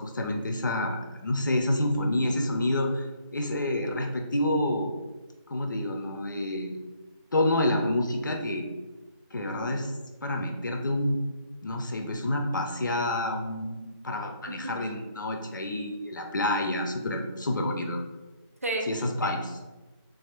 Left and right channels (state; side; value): inverted; both; correlation -0.66